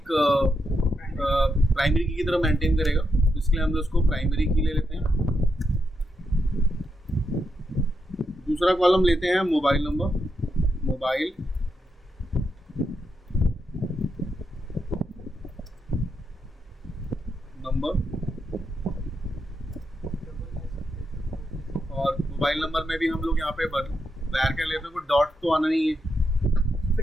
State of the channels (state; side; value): normal; both; correlation 0.83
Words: प्राइमरी की तरह मेंटेन करेगा, तो इसलिए हम लोग उसको प्राइमरी की ले लेते हैं। दूसरा कॉलम लेते हैं मोबाइल नंबर, मोबाइल नंबर। और मोबाइल नंबर में भी हम लोग यहाँ पे varchar लेते हैं, कोई डॉट तो आना नहीं है,